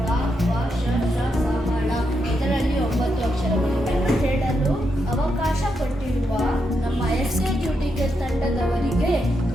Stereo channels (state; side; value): normal; both; correlation 0.83